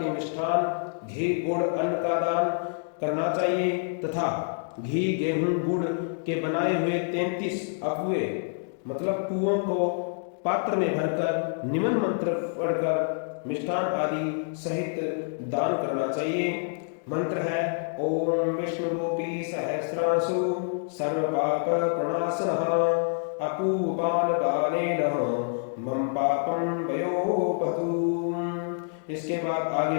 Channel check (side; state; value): right; silent; digital silence